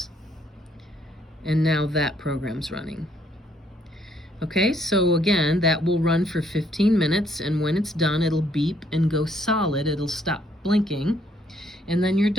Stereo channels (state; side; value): normal; both; correlation 0.68